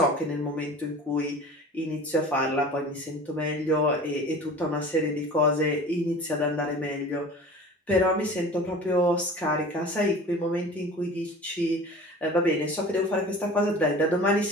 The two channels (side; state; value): both; normal; correlation 0.40